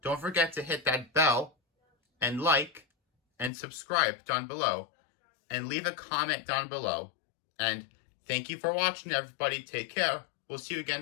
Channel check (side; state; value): right; drops out; at 3.5 s